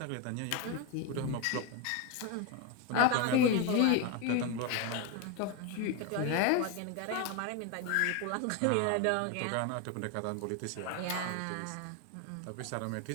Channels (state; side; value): different; both; correlation 0.02